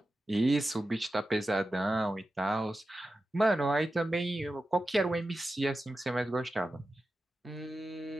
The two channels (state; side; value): normal; both; correlation 0.92